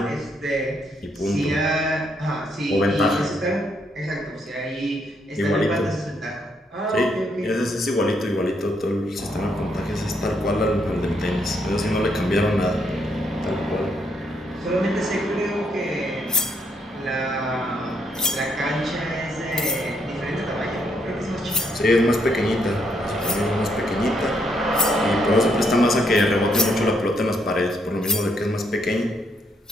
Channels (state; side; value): normal; both; correlation 0.74